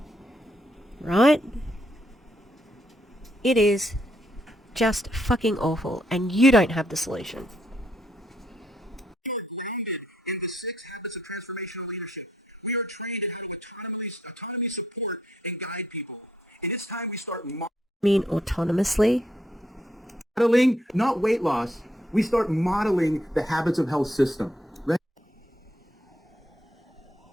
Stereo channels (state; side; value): normal; both; correlation 0.73